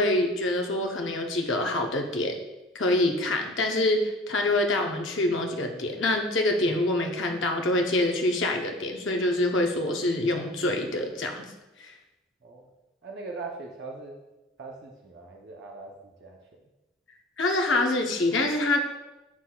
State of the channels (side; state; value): both; normal; correlation 0.42